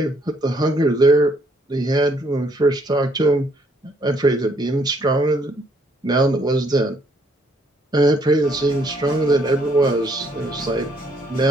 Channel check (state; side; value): normal; both; correlation 0.68